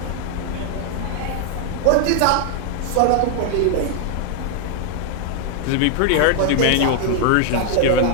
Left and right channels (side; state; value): both; different; correlation 0.00